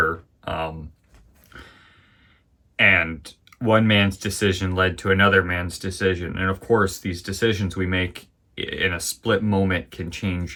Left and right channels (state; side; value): identical; both; correlation 1.00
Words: And one man's decision led to another man's decision. And of course, these decisions we make in a split moment can